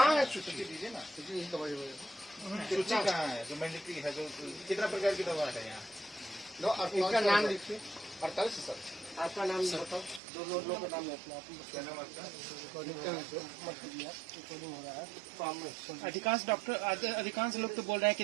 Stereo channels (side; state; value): left; drops out; at 10.2 s